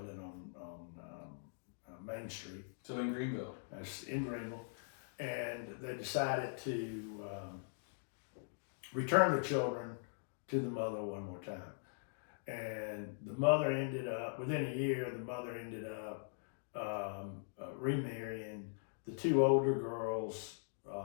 on Main Street. So in Greenville. That's in Greenville. And they decided to return the children to the mother one more time. And the mother ended up, within a year, the mother ended up remarrying. The 2 older girls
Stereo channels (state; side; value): silent; right; digital silence